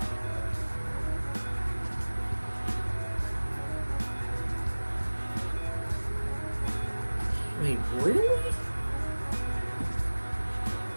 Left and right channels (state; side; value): inverted; both; correlation -1.00